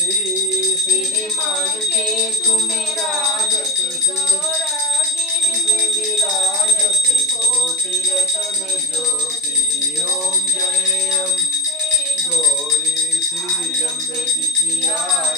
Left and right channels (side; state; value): both; normal; correlation 0.31